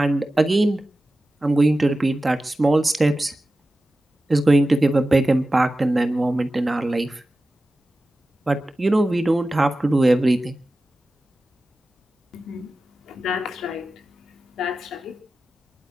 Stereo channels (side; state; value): both; normal; correlation 0.94